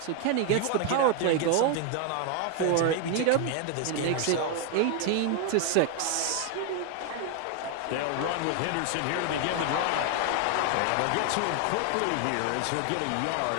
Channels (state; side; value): different; both; correlation 0.01